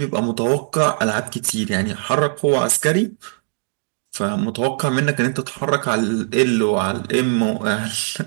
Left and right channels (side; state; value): left; silent; 66 dB below the other